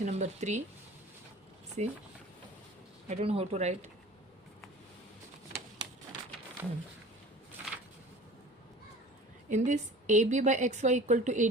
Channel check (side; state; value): both; normal; correlation 0.42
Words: number 3. See, I don't know how to write. In this, AB by XY equal to